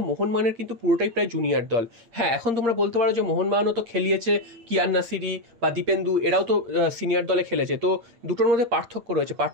মোহনবাগানের কিন্তু পুরোটাই প্রায় জুনিয়র দল। হ্যাঁ, এখন তোমরা বলতে পারো যে মোহনবাগানও তো খেলিয়েছে, কিয়ান নাসিরি বা দীপেন্দু, এরাও তো সিনিয়র দলে খেলেছে। তো দুটোর মধ্যে পার্থক্য রয়েছে।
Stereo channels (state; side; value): late; left; 8.6 ms